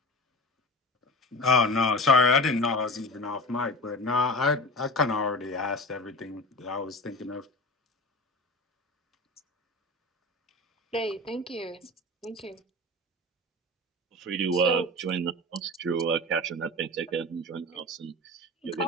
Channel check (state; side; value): normal; both; correlation 0.31